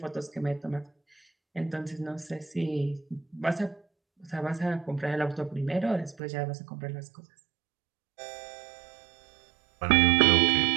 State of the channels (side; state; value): left; drops out; at 6.2 s